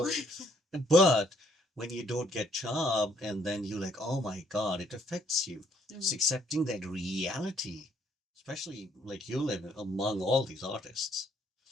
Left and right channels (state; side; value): normal; both; correlation 0.66